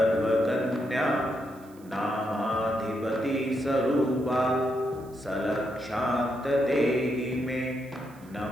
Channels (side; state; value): right; noise; hiss, 27 dB below the sound